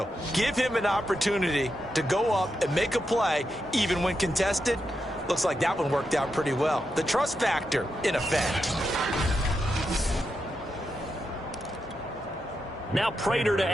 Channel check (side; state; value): both; normal; correlation 0.86